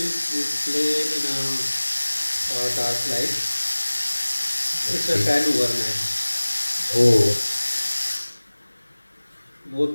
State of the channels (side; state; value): both; inverted; correlation -1.00